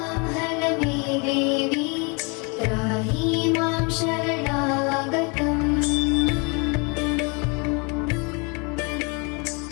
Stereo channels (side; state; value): right; quieter; 31.9 dB